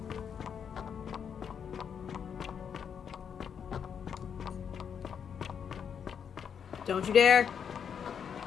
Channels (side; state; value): right; quieter; 7.5 dB